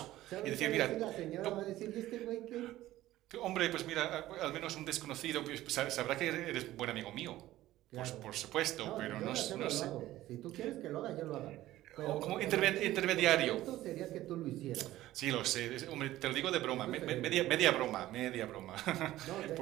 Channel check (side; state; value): left; quieter; 15.3 dB